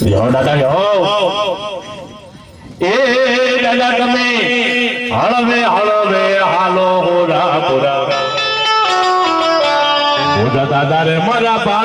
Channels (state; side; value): identical; both; correlation 1.00